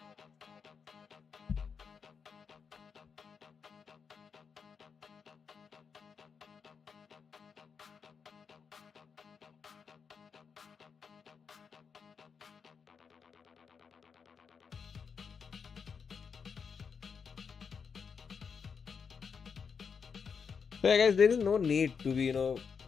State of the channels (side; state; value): right; quieter; 6.1 dB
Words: So yeah, guys, there is no need to be